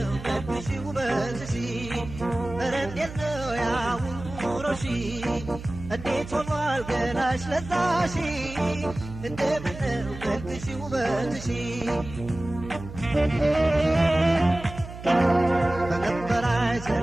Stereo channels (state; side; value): noise; right; hum, 12 dB below the sound